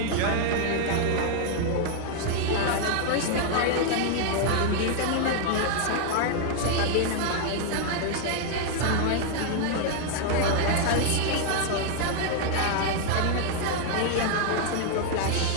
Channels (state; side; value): different; both; correlation 0.00